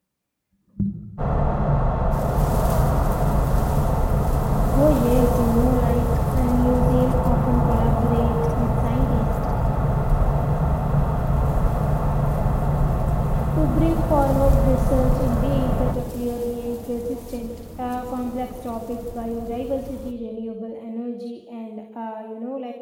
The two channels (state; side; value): identical; both; correlation 1.00